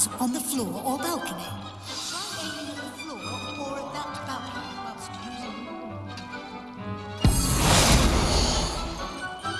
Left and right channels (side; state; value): both; identical; correlation 1.00